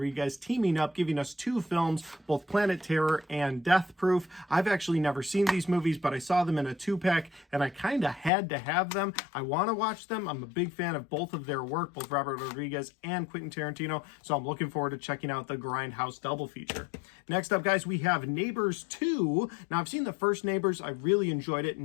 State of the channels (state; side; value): drops out; right; at 8.3 s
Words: teaming up, giving us 2 films, both Planet Terror and Death Proof. I've actually never seen these movies, but I saw them in a 2-pack, and I kind of had to have them. I want to watch them. I'm a big fan of both of their work, both Robert Rodriguez and Quentin Tarantino, so I'm looking forward to checking out the Grindhouse double feature. Next up, guys, we have Neighbors 2. Now, I've seen the first Neighbors. I really enjoyed it.